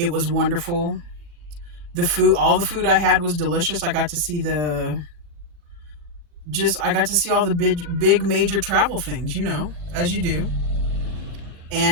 was wonderful. All the food I had was delicious. I got to see all the big major travel things, as you do.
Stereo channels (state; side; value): late; left; 40 ms